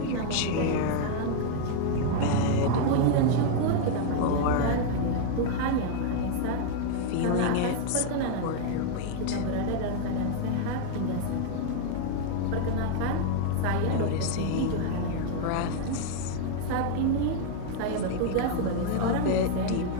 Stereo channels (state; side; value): different; both; correlation 0.00